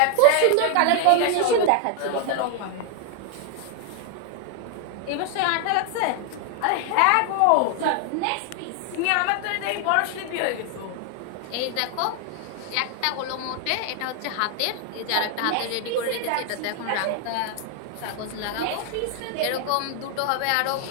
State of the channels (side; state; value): both; different; correlation 0.00